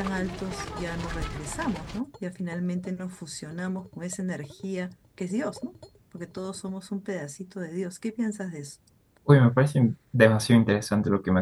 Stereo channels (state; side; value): identical; both; correlation 1.00